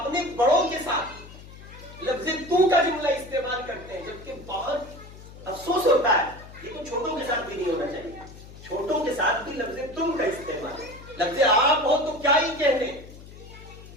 بڑوں کے ساتھ لفظ تو کا جملہ استعمال کرتے ہیں، جبکہ بہت افسوس ہوتا ہے یہ تو چھوٹوں کے ساتھ بھی نہیں ہونا چاہیے. چھوٹوں کے ساتھ بھی لفظ تم کا استعمال ہے. لفظ آپ ہو تو کیا ہی کہنے.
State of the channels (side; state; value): left; noise; hum, 17 dB below the sound